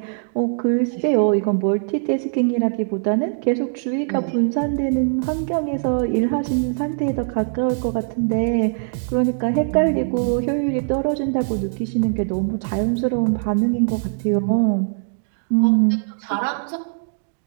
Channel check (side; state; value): left; silent; digital silence